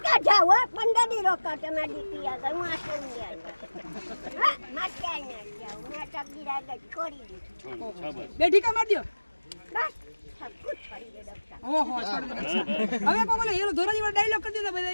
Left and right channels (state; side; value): inverted; both; correlation -1.00